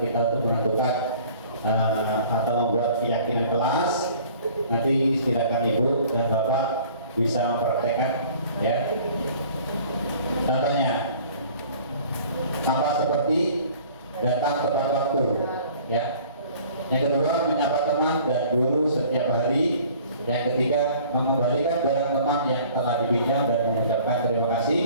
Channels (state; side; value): inverted; both; correlation -0.50